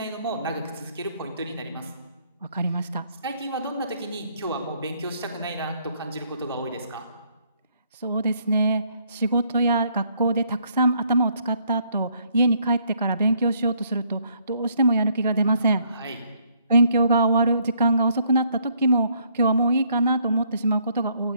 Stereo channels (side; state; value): both; inverted; correlation -0.68